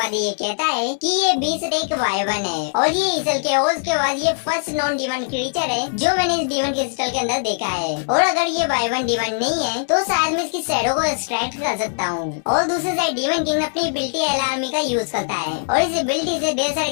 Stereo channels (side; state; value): right; silent; digital silence